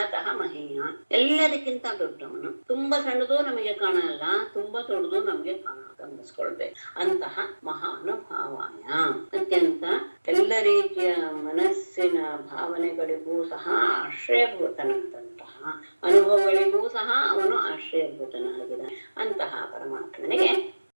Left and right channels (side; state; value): both; inverted; correlation -1.00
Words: ಮಹೀಯ, ಎಲ್ಲದಕ್ಕಿಂತ ದೊಡ್ಡವನು. ತುಂಬಾ ಸಣ್ಣದು ನಮಗೆ ಕಾಣಲ್ಲ, ತುಂಬಾ ದೊಡ್ಡದು ನಮಗೆ ಗಮನಿಸ್ಕೊಳ್ಬೇಕು. ಅಂತಹ ಮಹಾನುಭಾವಾಯ, ಅತ್ಯಂತ ಎಲ್ಲ ರೀತಿಯ ಮನಸ್ಸಿನ ಭಾವನೆಗಳಿಗೂ ಸಹ ಆಶ್ರಯಭೂತನಾದಂತಹ, ಅನುಭವಗಳಿಗೂ ಸಹ ಅವನು ಆಶ್ರಯಭೂತನಾಗಿದ್ದಾನೆ. ಅಂತಹ ಪರಮಾತ್ಮನಿಗೆ